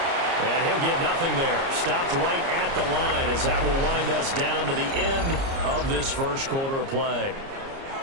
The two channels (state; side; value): late; left; 30 ms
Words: And he'll get nothing there. Stopped right at the line as that will wind us down to the end of this first quarter of play.